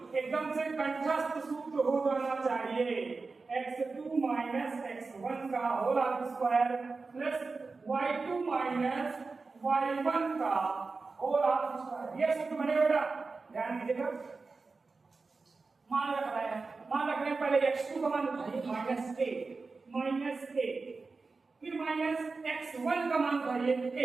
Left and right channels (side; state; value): left; quieter; 4.1 dB